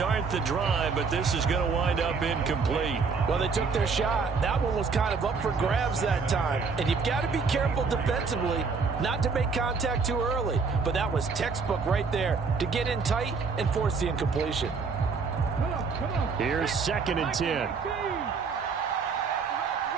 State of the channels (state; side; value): quieter; left; 5.0 dB